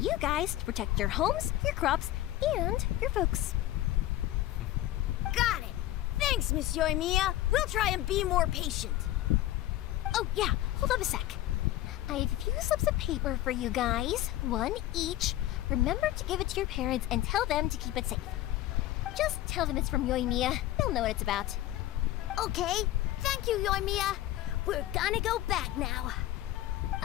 guys to protect your homes, your crops, and your folks. Got it. Thanks, Miss Yoimiya. We'll try and be more patient. Oh, yeah, hold up a sec. I have a few slips of paper for you guys, one each. Remember to give it to your parents and tell them to keep it safe. Just tell them it's from Yoimiya. They'll know what it's about. Okay. Thank you, Yoimiya. We're gonna go back now.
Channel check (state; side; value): quieter; right; 14.6 dB